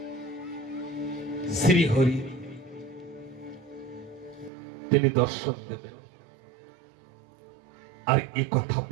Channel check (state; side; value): drops out; left; at 4.5 s